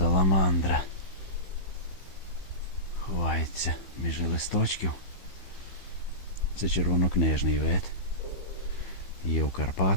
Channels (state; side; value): late; right; 15 ms